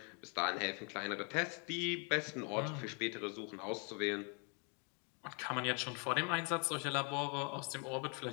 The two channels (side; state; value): right; quieter; 36.3 dB